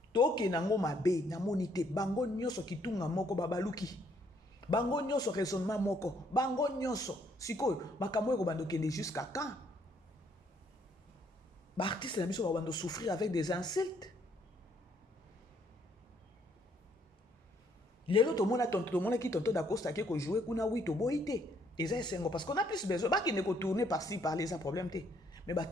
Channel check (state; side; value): normal; both; correlation 0.68